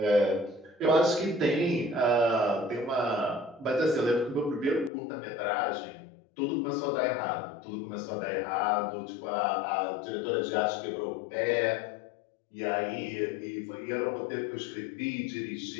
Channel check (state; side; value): drops out; right; at 4.9 s